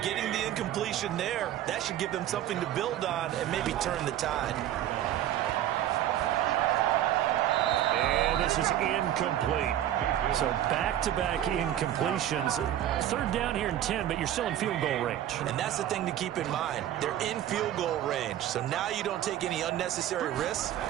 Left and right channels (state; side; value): quieter; left; 12.0 dB